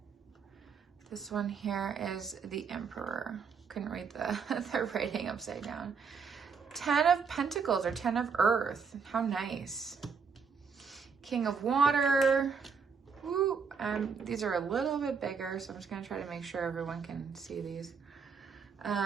This one here is the Emperor. Couldn't read the writing upside down. 10 of Pentacles or 10 of Earth. How nice. King of Water. Woo. These are a little bit bigger, so I'm just going to try to make sure everyone can see these.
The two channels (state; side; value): quieter; left; 5.8 dB